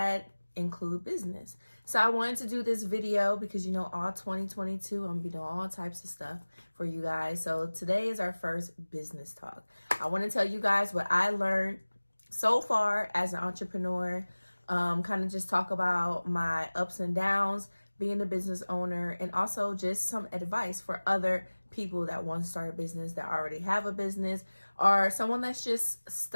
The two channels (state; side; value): inverted; both; correlation -1.00